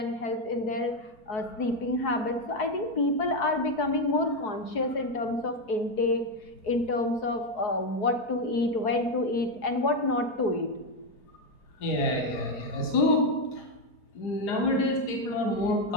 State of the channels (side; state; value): right; late; 4.5 ms